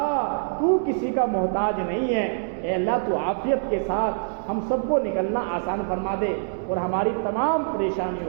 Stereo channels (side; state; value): left; silent; digital silence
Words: تو کسی کا محتاج نہیں ہے. اے اللہ تو عافیت کے ساتھ ہم سب کو نکلنا آسان فرما دے اور ہماری تمام